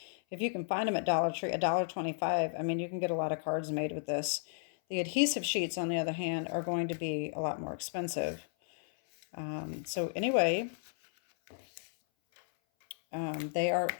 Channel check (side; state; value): right; silent; 55 dB below the other